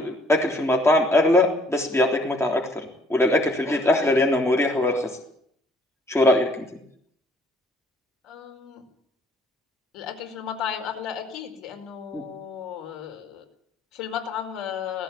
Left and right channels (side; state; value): both; normal; correlation 0.61